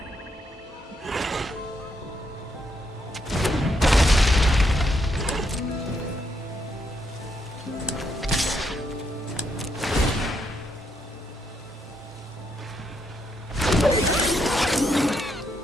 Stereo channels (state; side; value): normal; both; correlation 0.77